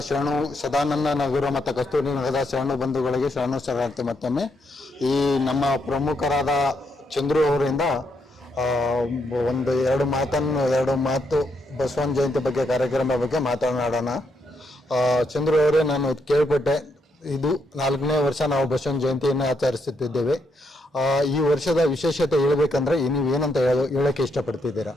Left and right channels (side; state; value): both; normal; correlation 0.77